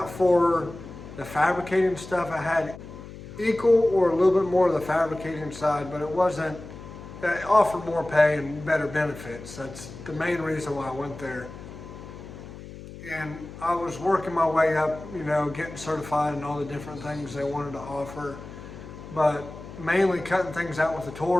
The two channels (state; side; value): noise; left; hum, 14 dB below the sound